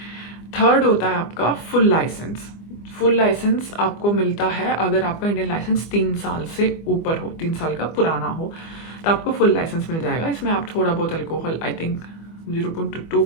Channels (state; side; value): late; right; 25 ms